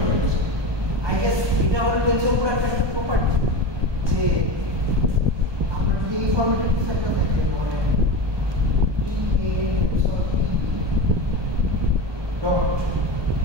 আই গেস এটা হলো টেনসর পুরো একটা প্রপার্টি যে আমরা যদি এই ফরম্যাটে কিছু একটা থাকে মানে E A tensor E dot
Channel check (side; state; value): left; late; 1.2 ms